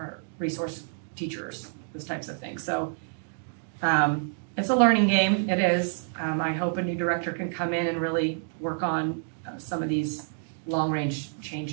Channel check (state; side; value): silent; left; digital silence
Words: resource teachers, those types of things. So it's a learning game, it is. I hope a new director can come in and really work on some of these long-range